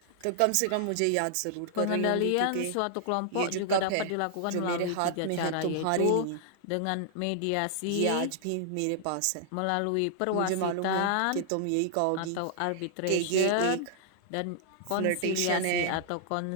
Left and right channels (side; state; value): both; different; correlation -0.01